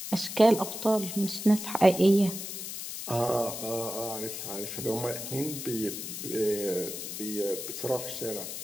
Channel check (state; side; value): noise; left; hiss, 7 dB below the sound